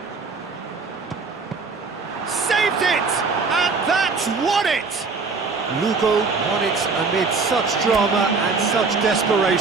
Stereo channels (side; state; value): left; quieter; 4.4 dB